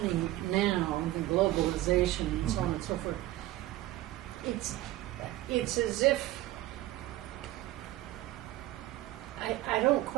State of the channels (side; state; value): left; quieter; 16.2 dB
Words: now, the globalization and so on and so forth. It's as if I don't